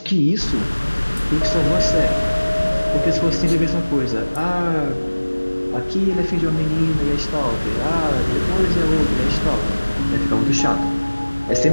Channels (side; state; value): both; inverted; correlation -1.00